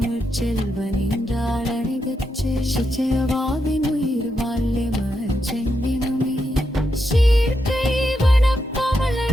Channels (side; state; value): both; normal; correlation 0.84